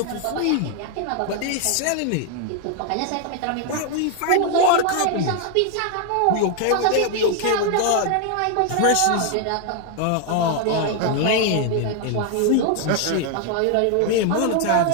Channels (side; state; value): both; different; correlation 0.00